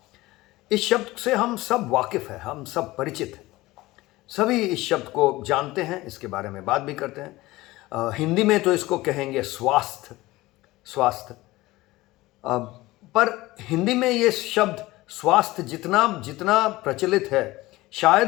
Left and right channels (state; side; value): quieter; right; 18.9 dB